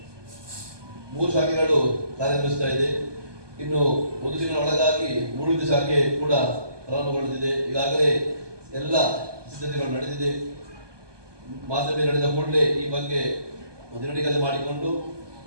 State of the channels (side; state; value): left; late; 1.2 ms